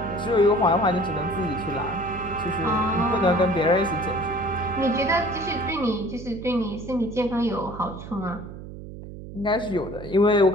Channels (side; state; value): right; noise; hum, 12 dB below the sound